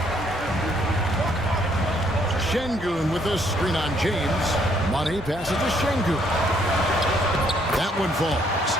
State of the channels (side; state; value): both; normal; correlation 0.68